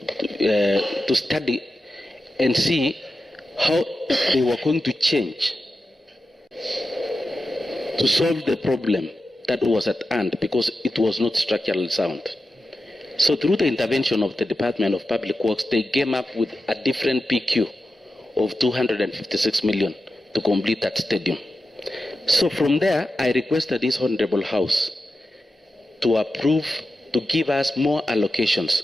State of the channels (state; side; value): normal; both; correlation 0.91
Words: to study and see how they were going to change to solve the problem that was at hand, because it was not structurally sound. So through the intervention of the Department of Public Works, they came up with a different PQ of 256 million to complete that stadium. So from there, I requested this Honorable House to approve, to give us more allocations